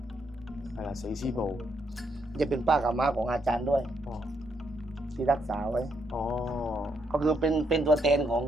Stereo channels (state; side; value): normal; both; correlation 0.77